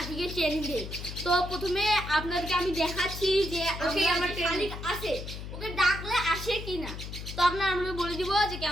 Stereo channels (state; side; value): noise; left; hum, 9 dB below the sound